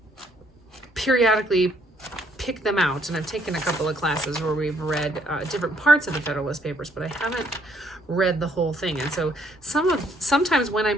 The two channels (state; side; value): normal; both; correlation 0.67